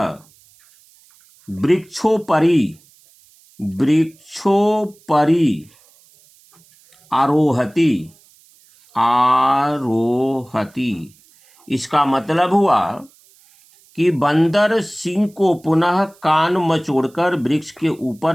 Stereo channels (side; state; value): right; noise; hiss, 30 dB below the sound